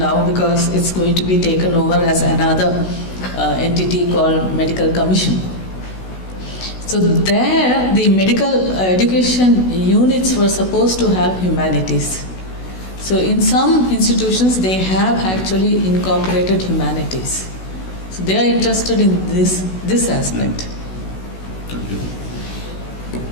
because it's going to be taken over as another entity called Medical Commission. So there, the medical education units were supposed to have humanities. So in some institutions, they have actually incorporated humanities. So they are interested in this aspect. Thank you.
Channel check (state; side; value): late; right; 16 ms